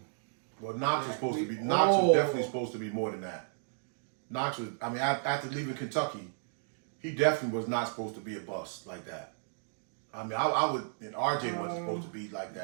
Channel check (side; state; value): left; silent; digital silence